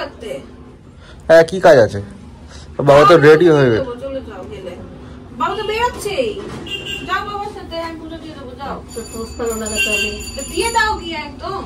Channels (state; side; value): identical; both; correlation 1.00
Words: হ্যাঁ কি কাজ আছে, বাবা তো রেডি হয়ে গেছে। চলে যাও, গেলে বাবা তো বেরোচ্ছেই, যাও বাবার সাথে, আমি পুজো দিয়ে দেবো, যাও। তো পোস্টারও লাগাতে হবে, দিয়ে দাও গিয়ে একদম।